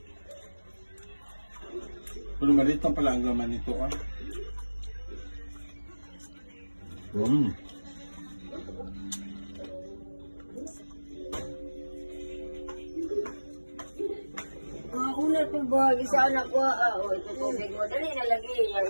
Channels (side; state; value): both; inverted; correlation -1.00